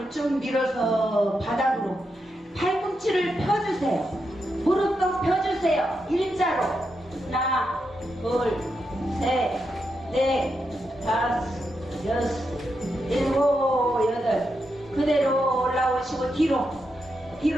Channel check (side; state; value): both; normal; correlation 0.85